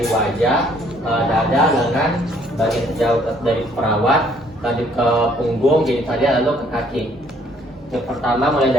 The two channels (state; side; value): normal; both; correlation 0.63